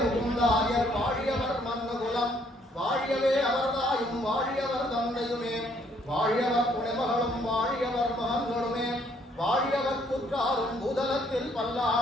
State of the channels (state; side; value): normal; both; correlation 0.66